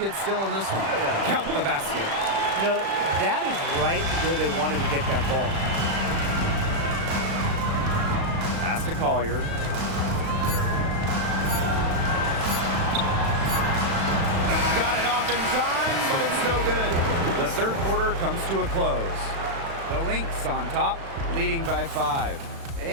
still in this one. Count the basket. You know, that is right where they wanted to get that ball. Pass to Collier. Got it off in time, but it's no good. The third quarter comes to a close. The Lynx on top, leading by 5.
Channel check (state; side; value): late; left; 36 ms